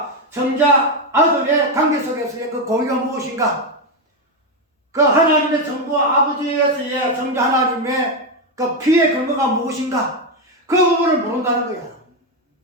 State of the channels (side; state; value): both; normal; correlation 0.07